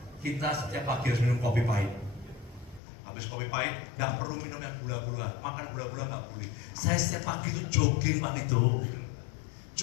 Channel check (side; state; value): right; drops out; at 2.8 s